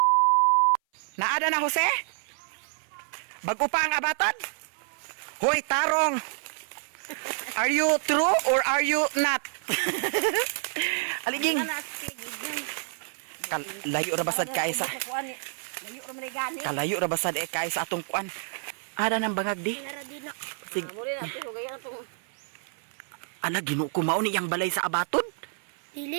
Naada na Jose? Bago pa ang abaton? Hoy tarong. Are you true or are you not? Aliging. Layo ra basad kay sa. Kalayo ra basad kay sa atong kuan. Ada nang bangag di. Sig. Ana ginu ko mao ni yang balay sa abaton.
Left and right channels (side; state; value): left; silent; 57 dB below the other